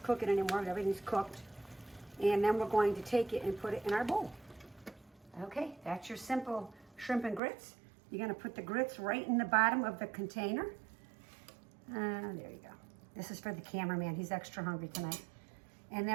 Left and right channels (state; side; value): drops out; left; at 7.4 s